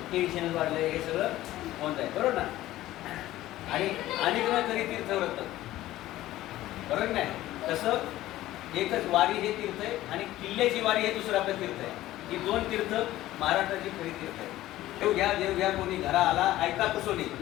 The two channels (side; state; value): right; quieter; 15.3 dB